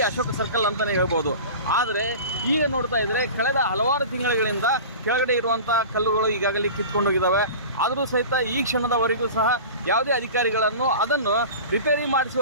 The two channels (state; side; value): inverted; both; correlation -0.36